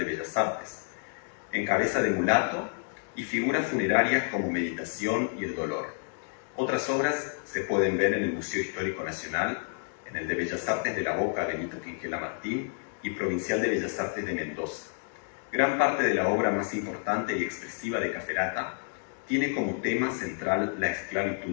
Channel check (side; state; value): right; silent; 58 dB below the other